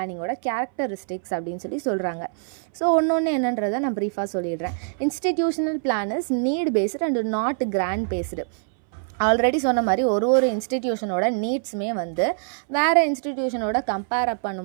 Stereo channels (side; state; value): left; silent; 60 dB below the other